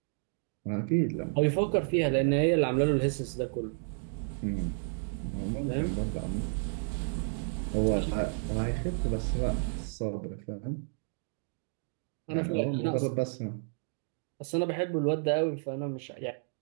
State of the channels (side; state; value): left; silent; digital silence